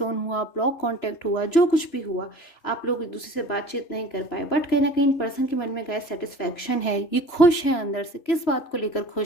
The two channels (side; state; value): right; late; 3.0 ms